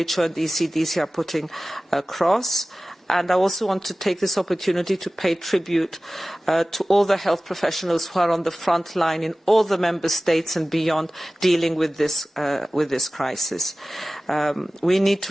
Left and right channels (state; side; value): normal; both; correlation 0.97